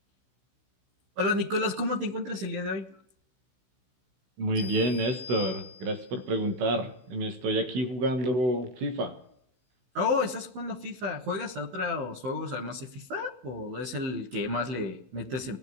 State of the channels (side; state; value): left; late; 16 ms